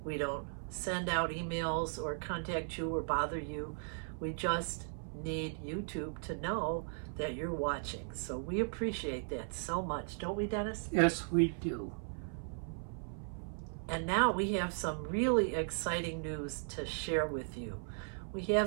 We don't send out emails or contact you or bother you. We just need YouTube to know that you're watching. So we appreciate that so much, don't we, Dennis? Yes, we do. And now we have some really exciting news to share with you. We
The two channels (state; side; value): silent; left; 53 dB below the other